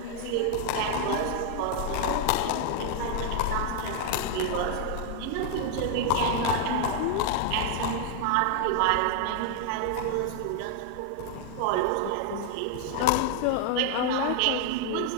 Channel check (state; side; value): different; both; correlation 0.00